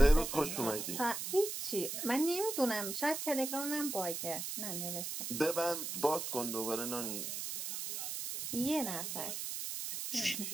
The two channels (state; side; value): noise; right; hiss, 4 dB below the sound